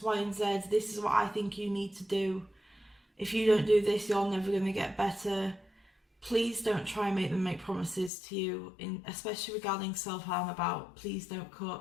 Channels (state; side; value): drops out; right; at 8.1 s